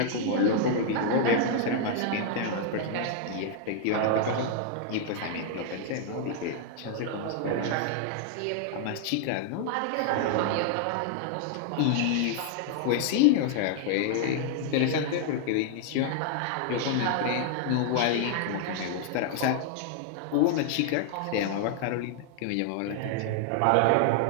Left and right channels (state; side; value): different; both; correlation 0.00